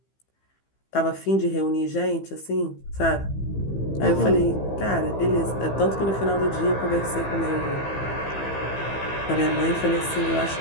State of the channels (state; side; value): late; right; 15 ms